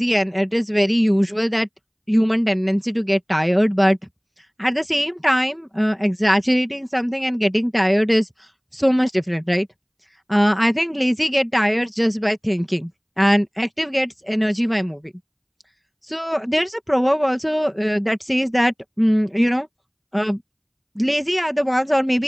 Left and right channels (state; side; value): identical; both; correlation 1.00